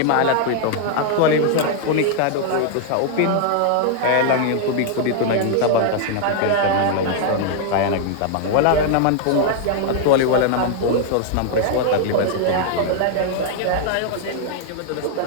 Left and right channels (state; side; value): different; both; correlation 0.00